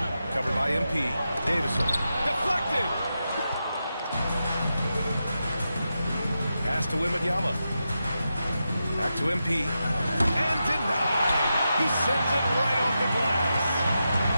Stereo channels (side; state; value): both; inverted; correlation -0.89